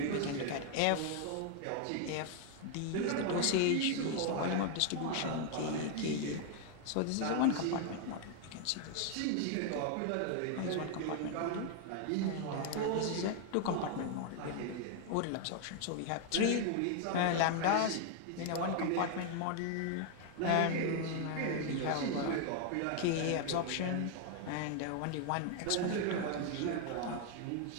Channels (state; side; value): different; both; correlation 0.00